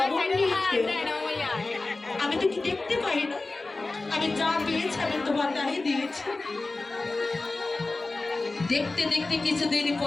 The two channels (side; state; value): right; quieter; 3.3 dB